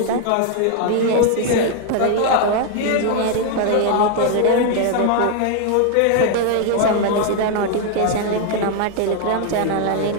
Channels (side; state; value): both; different; correlation 0.00